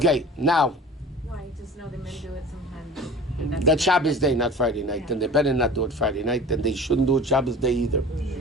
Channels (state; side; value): normal; both; correlation 0.40